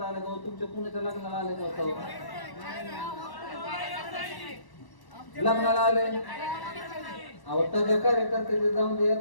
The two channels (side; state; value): right; late; 1.1 ms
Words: आलं का? तुमच्या कुणाच्या लग्नाला आलं का? लग्नाला आले अहो, त्याच्या कार्यकर्त्याचे जाऊन दे,